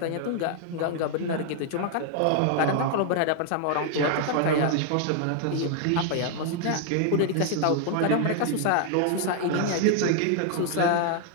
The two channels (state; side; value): different; both; correlation 0.00